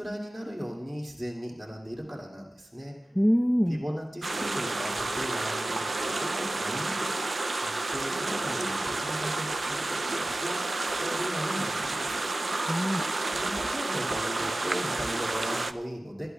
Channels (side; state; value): both; normal; correlation 0.96